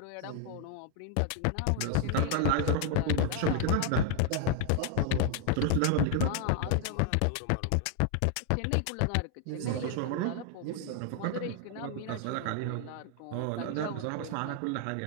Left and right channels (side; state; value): both; different; correlation 0.01